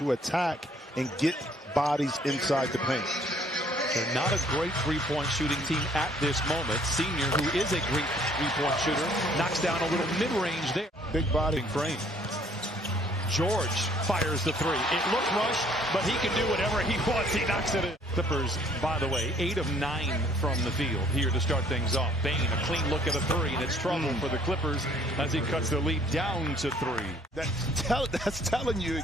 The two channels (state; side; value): normal; both; correlation 0.60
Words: attack and get bodies inside the paint. They're not a great three-point shooting team at this moment. Senior, who is a great three-point shooter, knocks down a little mid-range there. Big body frame. George fires the three. It looked rushed, but he can do whatever he wants. He knocks it in. Clippers, by the way, 8 of 9 from the field here to start things off. Bane, a clean look at a three, and it's trouble for the Clippers as he cuts the lead down to 3. That's telling you